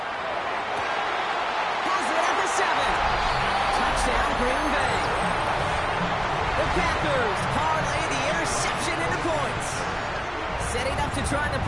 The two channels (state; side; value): identical; both; correlation 1.00